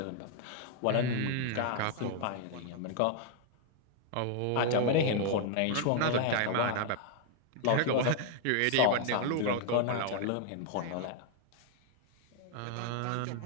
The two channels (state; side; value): different; both; correlation 0.00